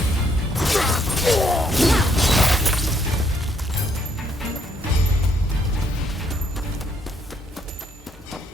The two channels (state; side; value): normal; both; correlation 0.70